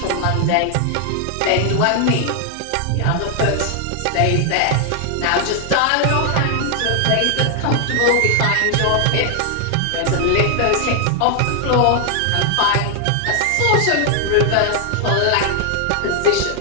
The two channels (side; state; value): both; different; correlation 0.00